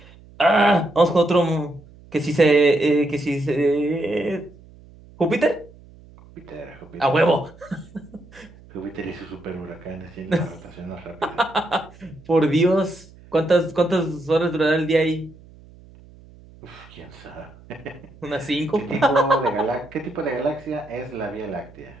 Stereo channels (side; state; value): right; noise; hum, 23 dB below the sound